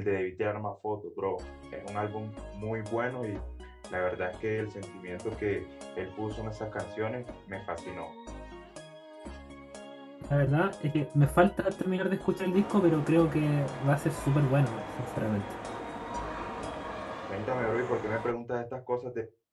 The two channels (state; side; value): identical; both; correlation 1.00